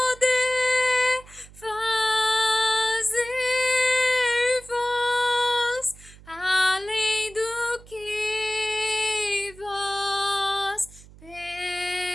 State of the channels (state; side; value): noise; right; hum, 21 dB below the sound